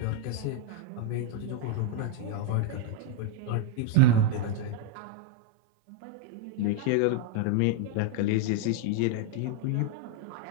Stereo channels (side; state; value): both; different; correlation 0.01